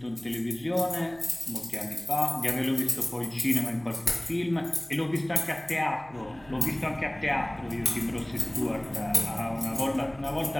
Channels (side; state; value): right; noise; hum, 25 dB below the sound